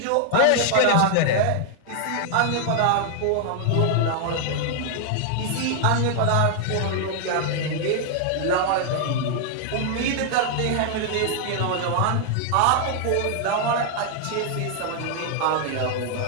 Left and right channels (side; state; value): both; different; correlation 0.00